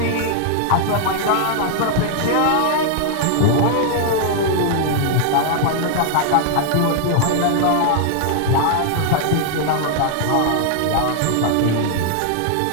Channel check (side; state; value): both; different; correlation 0.00